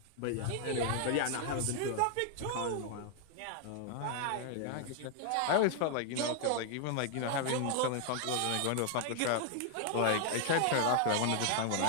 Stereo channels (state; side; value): different; both; correlation 0.00